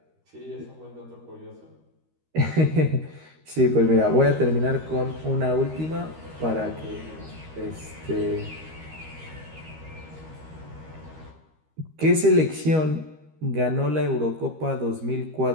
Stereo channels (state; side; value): late; left; 13 ms